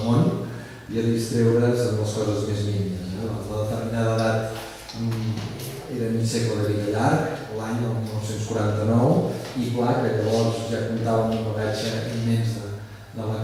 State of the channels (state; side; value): identical; both; correlation 1.00